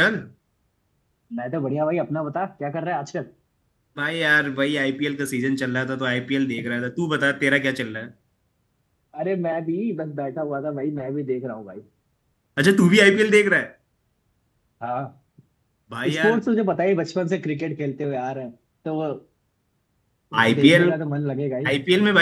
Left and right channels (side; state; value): both; identical; correlation 1.00